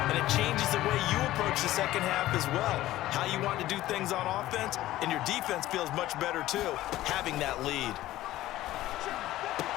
and it changes the way you approach the second half as well. How you want to do things on offense, and your defense feels much better too, having that lead.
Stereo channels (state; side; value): quieter; right; 15.3 dB